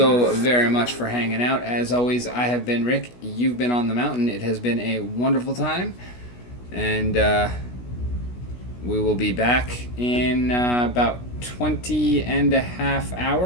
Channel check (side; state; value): right; late; 16 ms